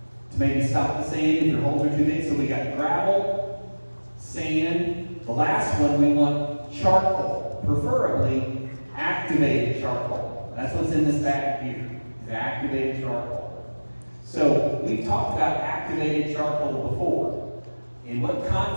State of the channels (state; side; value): inverted; both; correlation -1.00